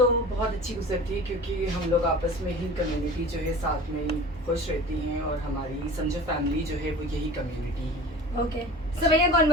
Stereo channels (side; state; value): both; normal; correlation 0.38